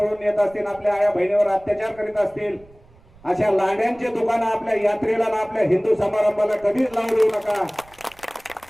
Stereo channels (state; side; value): noise; right; rumble, 27 dB below the sound